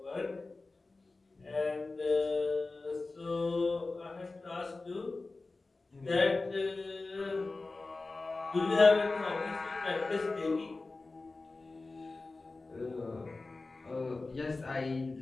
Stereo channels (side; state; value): right; quieter; 3.5 dB